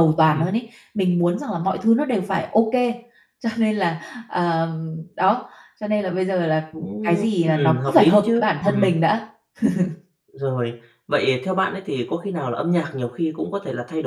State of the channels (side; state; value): both; identical; correlation 1.00